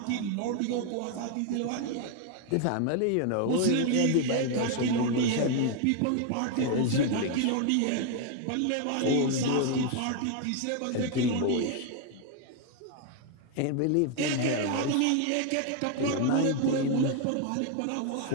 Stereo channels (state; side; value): different; both; correlation 0.01